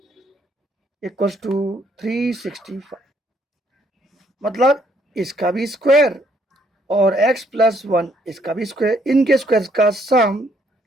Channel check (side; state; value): both; normal; correlation 0.68